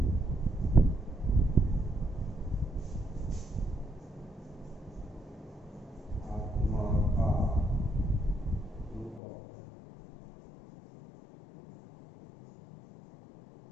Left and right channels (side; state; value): right; drops out; at 9.2 s